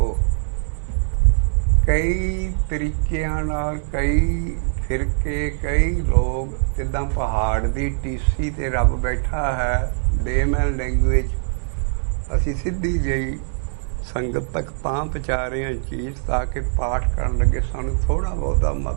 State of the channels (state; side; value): silent; left; digital silence